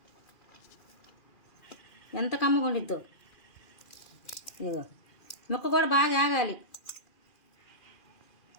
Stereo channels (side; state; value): right; late; 2.4 ms